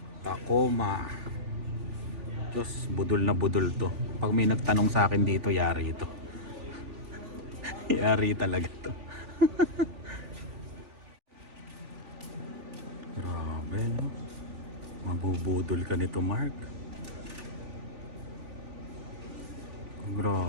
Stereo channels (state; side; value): late; left; 3.4 ms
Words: Tacoma. Diyos, budol na budol to. Pag may nagtanong sa akin dito, yari ito. Yari talaga to. Grabe no. Mabubudol ka nito, Mark.